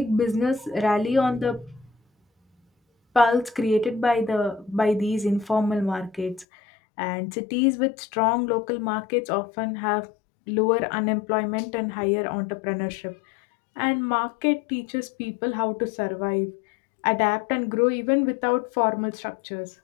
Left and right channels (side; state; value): right; drops out; at 6.5 s